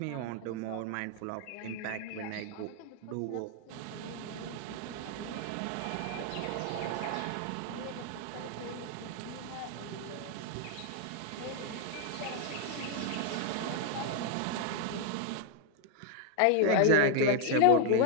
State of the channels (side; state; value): both; different; correlation 0.00